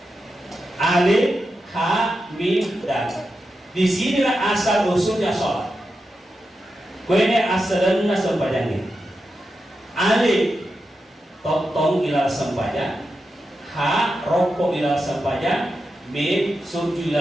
Alif, ha, mim, dan. Di sinilah asal usulnya sholat. Kuene asalnya sempajangnya. Alif, totong ilal sempajang. Ha, rokok ilal sempajang. Mim, suju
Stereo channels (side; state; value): both; normal; correlation 0.89